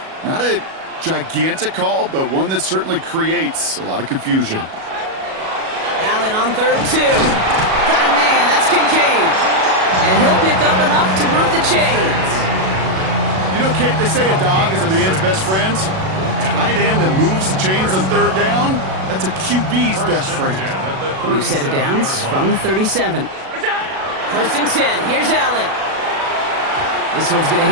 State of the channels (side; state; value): left; late; 37 ms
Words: Not a gigantic call, but one that certainly creates a lot of confusion. Allen on 3rd and 2. Got a man, that's Kincaid. And he'll pick up enough to move the chains. You know, Kate, they say a dog is a man's best friend. A tight end that moves the chains on 3rd down, that's a QB's best friend. New set of downs from the 37. First and 10. Here's Allen. This one's going to